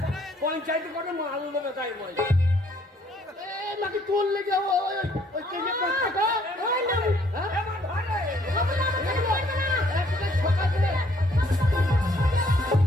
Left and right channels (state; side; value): normal; both; correlation 0.64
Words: পঞ্চায়েতে করে মাল দেবে, তাই বল। নাকি তোর লেগে ওই কেজি টাকা, ওই না, হ্যাঁ এবার ধরে। বাবা না, আমাকে বলবে না। সকাল দিলে